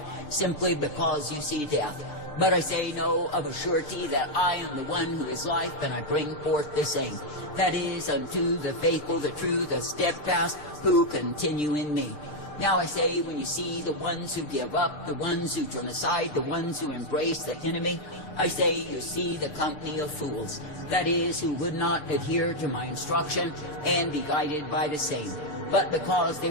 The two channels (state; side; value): late; right; 6.7 ms